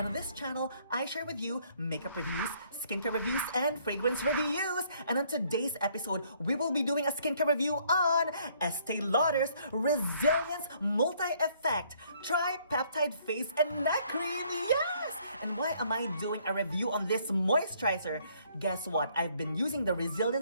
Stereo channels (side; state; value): both; inverted; correlation -0.65